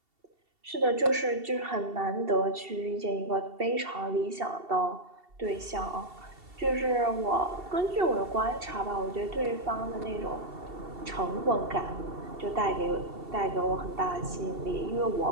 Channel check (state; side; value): late; left; 2.7 ms